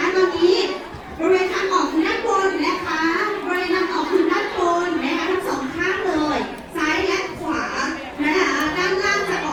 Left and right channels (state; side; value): identical; both; correlation 1.00